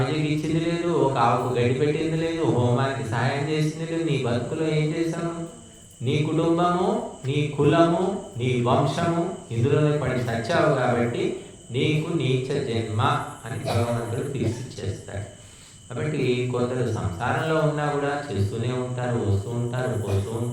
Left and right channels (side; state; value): both; identical; correlation 1.00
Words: ఇచ్చింది లేదు, ఒక ఆవుకు గడ్డి పెట్టింది లేదు, హోమానికి సహాయం చేసింది లేదు. నీ బతుకులో ఏం చేశాను? నీ కుటుంబము, నీ కులము, నీ వంశము ఇందులోనే పడి సచ్చావు కాబట్టి నీకు నీచ జన్మ అని భగవంతుడు తీర్చిచ్చేస్తాడు. కాబట్టి కొందరు సంసారంలో ఉన్నా కూడా చేస్తూనే ఉంటారు, వస్తూ ఉంటారు, పోతూ